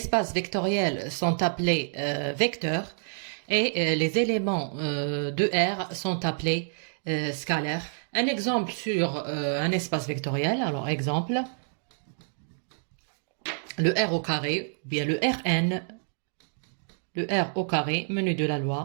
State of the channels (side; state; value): left; silent; digital silence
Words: vectoriel sont appelés vecteurs et les éléments de R sont appelés scalaires. Un exemple sur un espace vectoriel, alors exemple, le R au carré, ou bien le Rn, le R au carré, menu de la